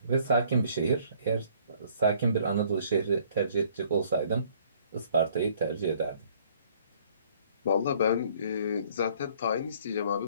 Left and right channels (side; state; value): both; inverted; correlation -0.60